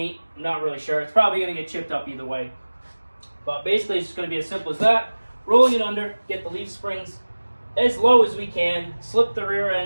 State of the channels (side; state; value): both; inverted; correlation -1.00